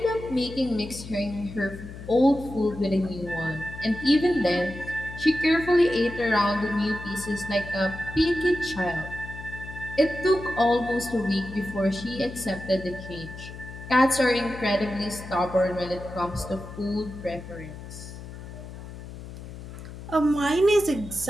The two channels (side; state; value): left; noise; hum, 12 dB below the sound